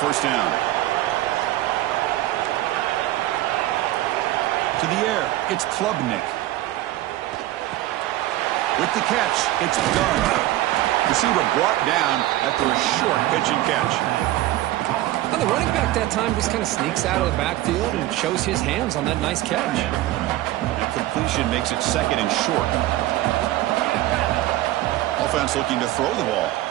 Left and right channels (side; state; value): left; quieter; 15.7 dB